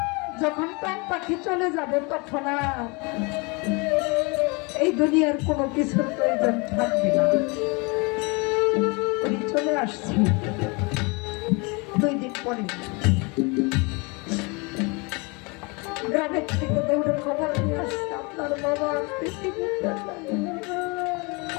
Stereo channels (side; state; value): right; quieter; 29.1 dB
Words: যখন প্রাণ পাখি চলে যাবে তখন আর এই দুনিয়ার কোনো কিছুর প্রয়োজন থাকবে না। উনি চলে আসছি 2 দিন পরে। গ্রামের থেকে দৌড়ে খবর নিয়ে আসছে আপনার বাবা পৃথিবীতে।